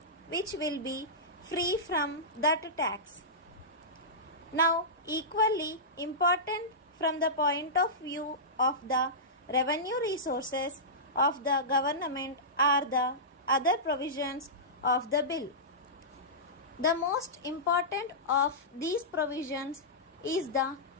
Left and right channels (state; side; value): normal; both; correlation -0.16